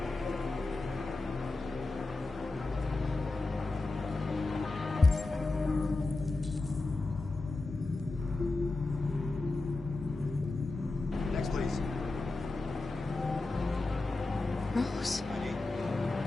Next, please. Rose. ID.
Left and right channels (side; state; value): right; quieter; 3.2 dB